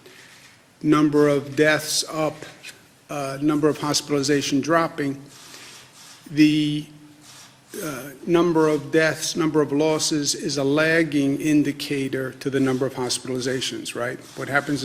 number of deaths up, number of hospitalization dropping, the number of deaths, number of losses is a lagging indicator to the number of hospitalizations, right? What happens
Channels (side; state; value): both; identical; correlation 1.00